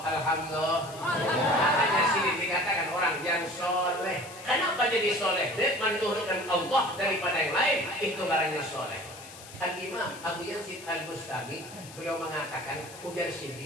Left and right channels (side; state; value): left; noise; hiss, 17 dB below the sound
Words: alhamdulillah. Makanya sidin dikatakan orang yang soleh. Kenapa jadi soleh? Dia menduhurkan Allah daripada yang lain, itu garanya soleh. Al-Imam Abu Yazid Al-Bustami beliau mengatakan, ujar